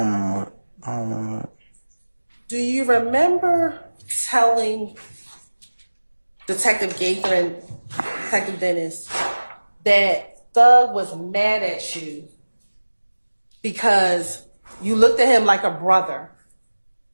remember it. I don't remember it. Do you remember telling Detective Gaither and Detective Dennis that Thug was mad at you because you looked at him like a brother,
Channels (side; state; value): both; inverted; correlation -1.00